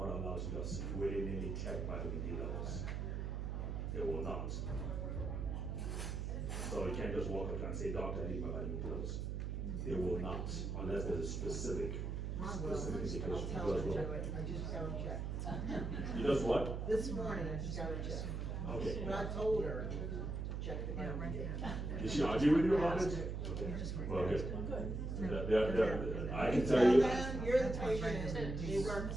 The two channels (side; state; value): right; noise; hum, 3 dB below the sound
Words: allowed to just willy-nilly check vitamin D levels. They will not. So you can't just walk up and say, doctor, I need my vitamin D levels. They will not, unless there's a specific indication. I'll tell her to do it. I just got to check. You just what? This morning, I just got to check. Okay. But I told her, check the vitamin D. Did she argue with you about it? Okay. Well, good. I can tell you. You're the patient, and they work